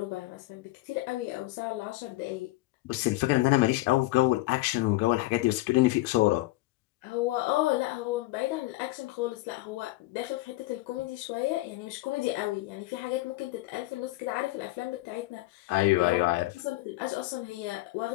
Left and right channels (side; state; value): right; quieter; 19.0 dB